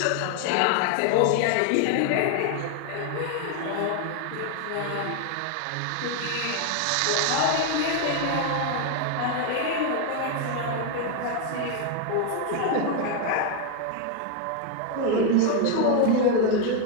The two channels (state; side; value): different; both; correlation 0.01